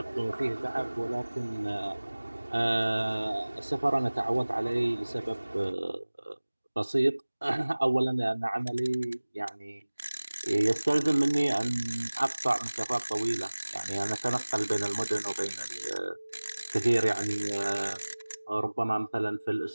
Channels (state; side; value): inverted; both; correlation -1.00